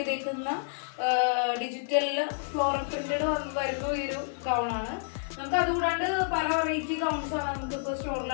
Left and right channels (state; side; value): silent; right; digital silence